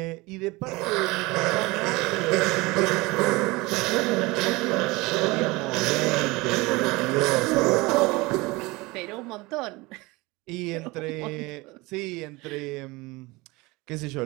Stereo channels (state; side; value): quieter; left; 22.9 dB